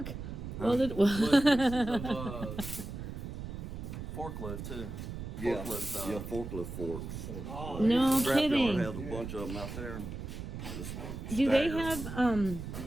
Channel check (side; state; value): right; noise; rumble, 7 dB below the sound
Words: Welded? Forklift too. Yeah, Forklift, yeah, forklift forks. No Scrapyard kidding. has a bunch of them out there. And just Do they stagger 'em. have